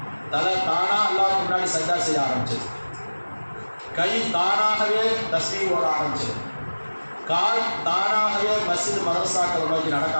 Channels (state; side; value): inverted; both; correlation -1.00